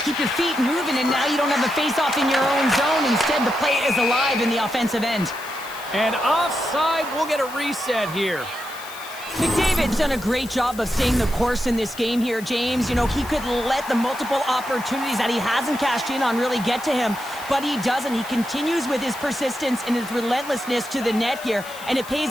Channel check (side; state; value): left; noise; hiss, 17 dB below the sound